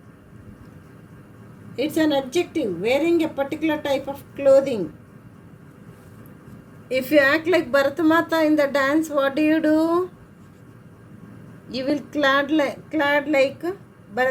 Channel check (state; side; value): identical; both; correlation 1.00